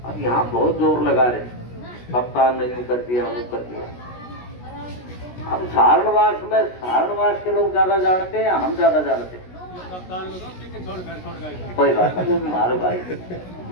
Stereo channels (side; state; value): right; late; 16 ms